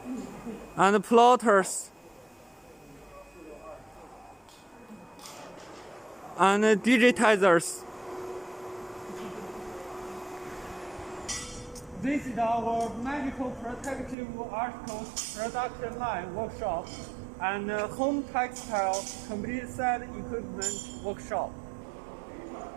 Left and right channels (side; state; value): left; drops out; at 14.2 s